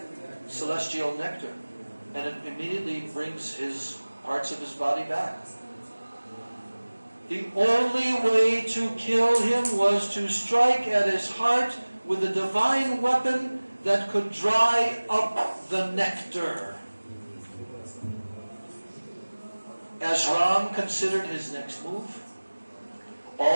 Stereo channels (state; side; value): inverted; both; correlation -1.00